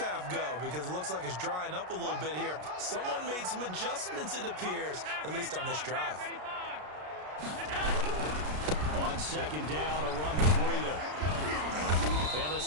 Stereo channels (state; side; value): late; left; 33 ms